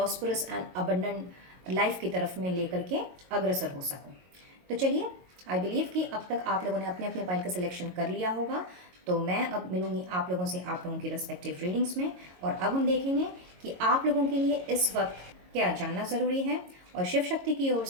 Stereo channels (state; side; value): late; left; 22 ms